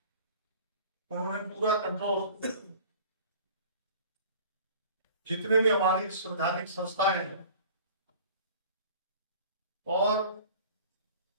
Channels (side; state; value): both; inverted; correlation -0.45